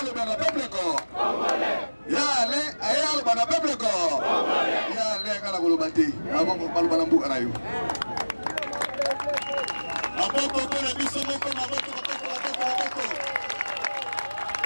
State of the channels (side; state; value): both; inverted; correlation -1.00